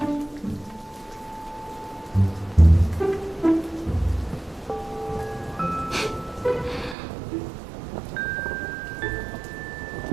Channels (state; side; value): drops out; left; at 7.0 s